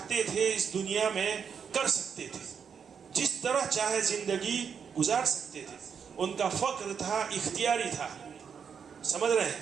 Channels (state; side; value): quieter; left; 6.8 dB